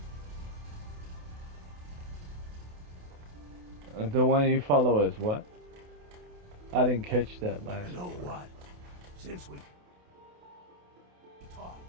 The one you follow is what? I didn't catch that last. You know what? Since we talked,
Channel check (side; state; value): left; late; 28 ms